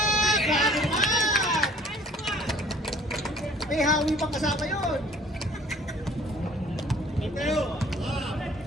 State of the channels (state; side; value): normal; both; correlation 0.54